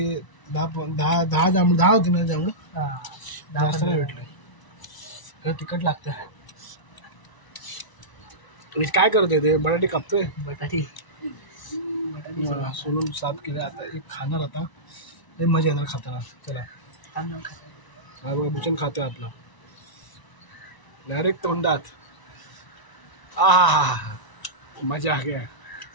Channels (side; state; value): right; late; 1.0 ms